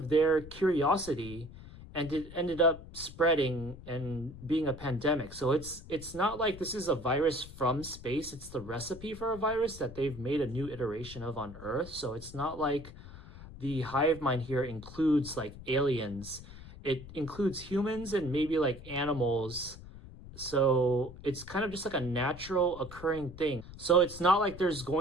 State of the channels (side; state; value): left; noise; rumble, 16 dB below the sound